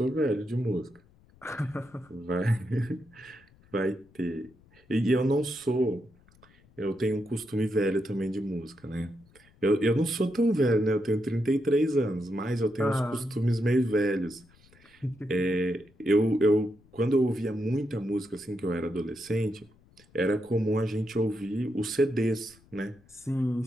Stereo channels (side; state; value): left; noise; rumble, 29 dB below the sound